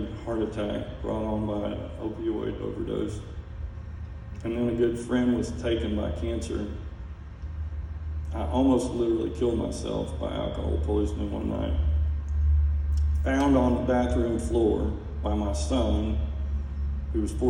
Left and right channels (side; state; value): both; identical; correlation 1.00